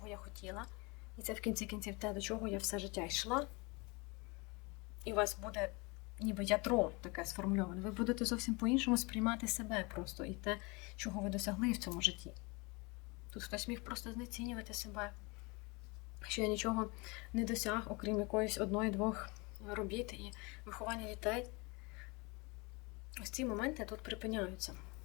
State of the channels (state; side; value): quieter; right; 27.6 dB